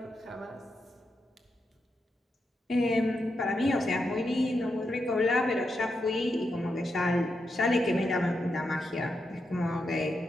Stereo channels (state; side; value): normal; both; correlation 0.84